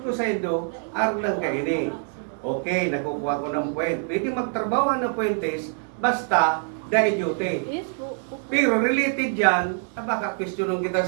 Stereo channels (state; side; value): silent; left; 58 dB below the other